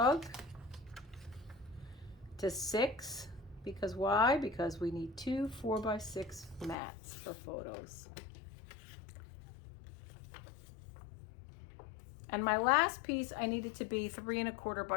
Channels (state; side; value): drops out; right; at 6.8 s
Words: to 6, because why? Because we need 2 4x6 mats for photos. And my last piece, I need it to be 3¼